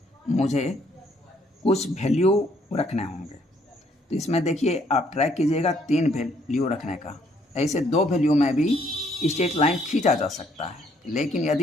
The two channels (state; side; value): normal; both; correlation 0.67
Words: मुझे कुछ वैल्यू रखने होंगे, तो इसमें देखिए आप ट्राई कीजिएगा 3 वैल्यू रखने का। ऐसे 2 वैल्यू में भी स्ट्रेट लाइन खींचा जा सकता है, लेकिन